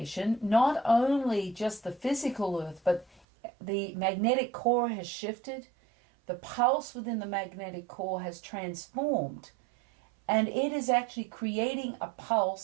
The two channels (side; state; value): left; drops out; at 3.2 s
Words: not only just the physical Earth, but the magnetic core has shifted. The pulse within the magnetic core has transformed, and it is actually creating a